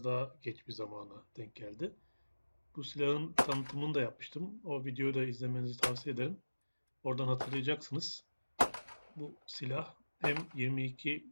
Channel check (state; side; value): inverted; both; correlation -1.00